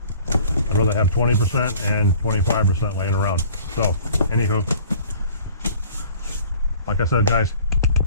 rather have 20% and 25% laying around. So, anywho, like I said, guys,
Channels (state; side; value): inverted; both; correlation -0.50